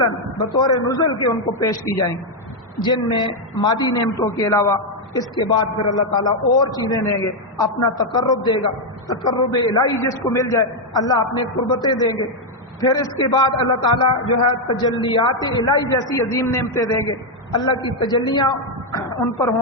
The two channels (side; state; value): both; normal; correlation 0.01